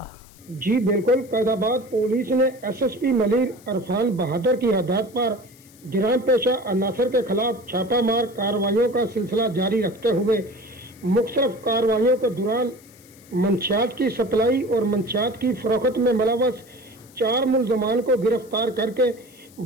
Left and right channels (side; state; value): left; noise; hiss, 25 dB below the sound